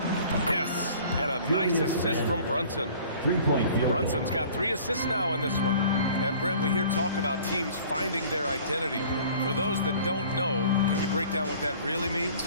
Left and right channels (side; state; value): both; inverted; correlation -0.49